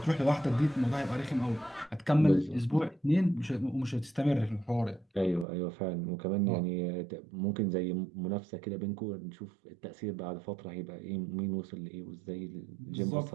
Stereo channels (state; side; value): drops out; left; at 5.5 s